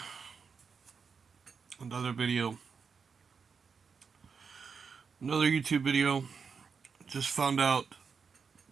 Another video. Another YouTube video. Just found out.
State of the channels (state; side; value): quieter; left; 5.7 dB